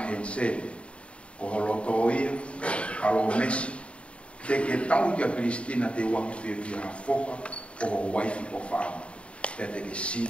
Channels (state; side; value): late; right; 0.060 ms